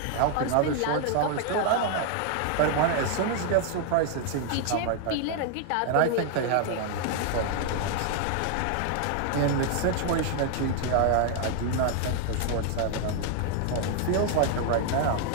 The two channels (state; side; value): different; both; correlation 0.00